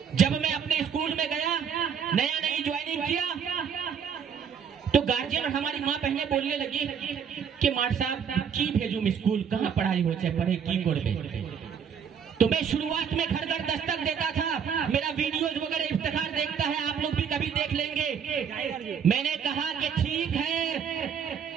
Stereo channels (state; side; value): quieter; left; 7.3 dB